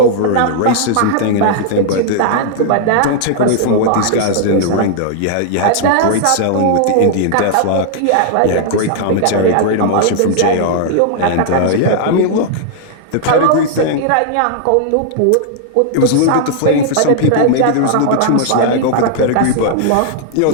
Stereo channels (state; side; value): different; both; correlation -0.01